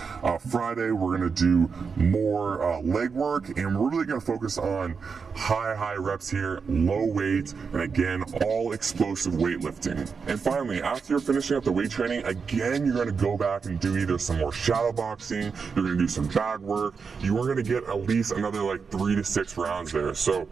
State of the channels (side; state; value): left; quieter; 5.5 dB